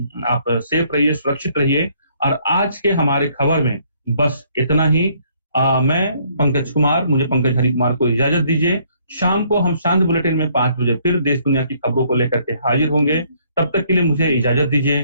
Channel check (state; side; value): inverted; both; correlation -0.65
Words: आप सेफ रहिए, सुरक्षित रहिए। और आज के हमारे खबर में बस इतना ही। मैं पंकज कुमार, मुझे पंकज हरि कुमार को इजाजत दीजिए। शाम को हम शांत बुलेटिन में 5 बजे फिर देश दुनिया की खबरों को लेकर के हाजिर होंगे। तब तक के लिए मुझे इजाजत